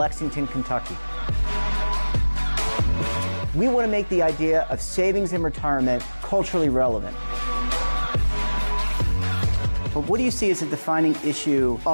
Kentucky. We want to make the idea of savings and retirement culturally relevant. But what do you see as a defining issue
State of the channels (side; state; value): both; inverted; correlation -1.00